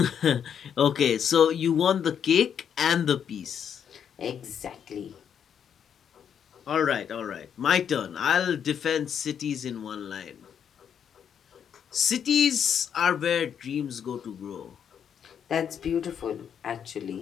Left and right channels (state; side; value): quieter; right; 8.2 dB